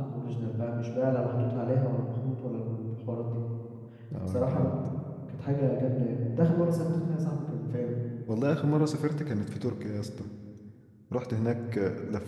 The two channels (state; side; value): identical; both; correlation 1.00